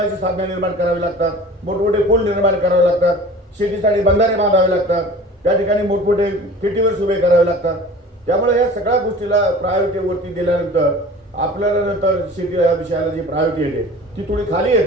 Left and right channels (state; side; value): normal; both; correlation 0.42